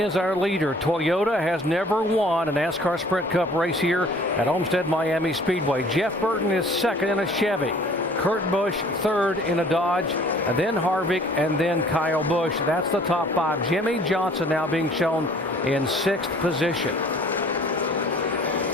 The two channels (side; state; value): both; normal; correlation 0.52